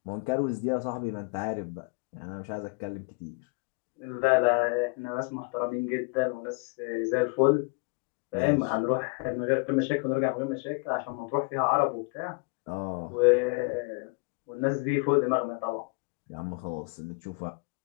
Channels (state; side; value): quieter; right; 33.7 dB